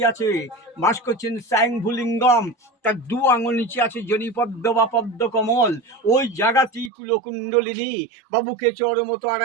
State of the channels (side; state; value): left; drops out; at 6.9 s